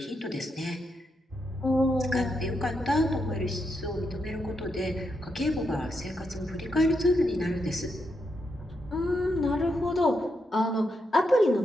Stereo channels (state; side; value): normal; both; correlation 0.83